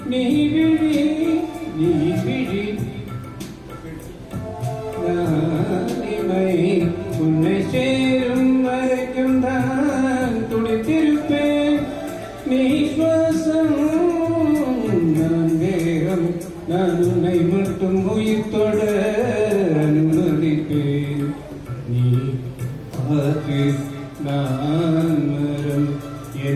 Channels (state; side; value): identical; both; correlation 1.00